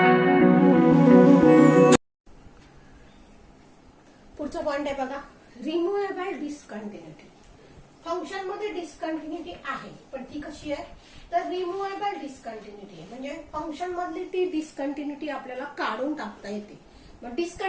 पॉइंट आहे बघा, रिमूव्हेबल डिस्कंटिन्युटी. फंक्शन मध्ये डिस्कंटिन्युटी आहे, पण ती कशी आहे तर रिमूव्हेबल डिस्कंटिन्युटी आहे. म्हणजे फंक्शन मधली ती डिस्कंटिन्युटी आपल्याला काढून टाकता येते. मग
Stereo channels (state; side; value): identical; both; correlation 1.00